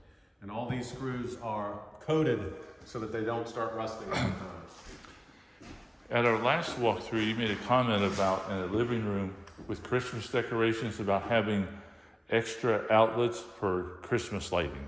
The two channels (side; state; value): both; identical; correlation 1.00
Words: And all these screws are coated so that they don't start rusting over time. At our last walkthrough, you made a comment about in a living room with Christmas decorations about having extra outlets for Christmas